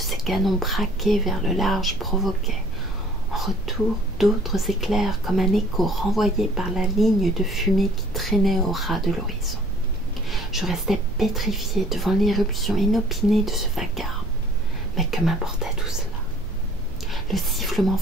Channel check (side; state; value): both; normal; correlation 0.54